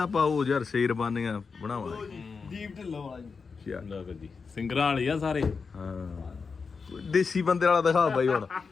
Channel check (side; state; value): right; quieter; 5.1 dB